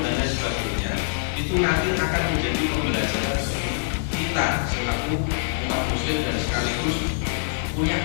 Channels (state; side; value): silent; right; digital silence